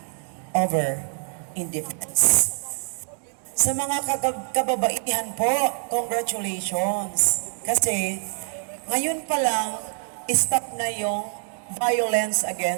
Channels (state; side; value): silent; left; digital silence